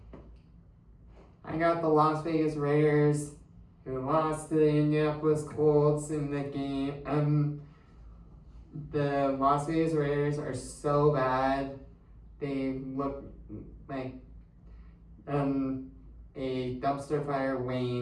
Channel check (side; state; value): both; identical; correlation 1.00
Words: I got the Las Vegas Raiders, who lost to the Indianapolis Colts in the game. The Las Vegas Raiders are so bad. They look like a dumpster fire